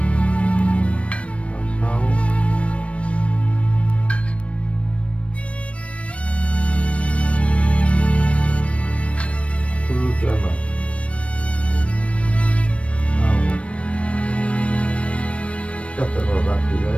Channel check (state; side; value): late; right; 0.062 ms